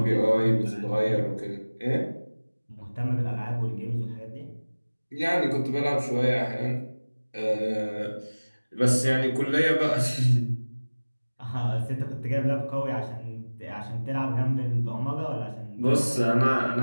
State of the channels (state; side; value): inverted; both; correlation -1.00